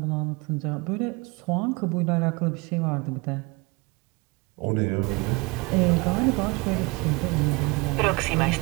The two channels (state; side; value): quieter; left; 26.5 dB